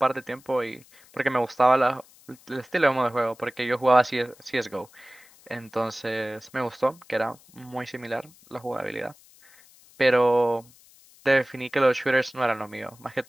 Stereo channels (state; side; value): noise; left; hiss, 26 dB below the sound